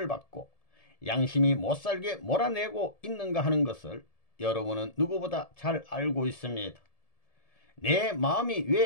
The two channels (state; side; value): late; right; 1.7 ms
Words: 받고 양심이 못살게 몰아내고 있는가 하는 것을 여러분은 누구보다 잘 알고 있습니다. 내 마음이